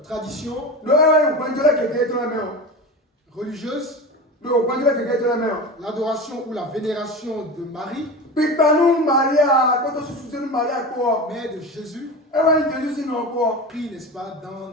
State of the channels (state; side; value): normal; both; correlation 0.27